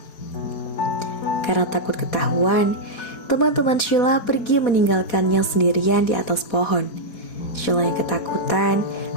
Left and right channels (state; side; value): late; right; 4.2 ms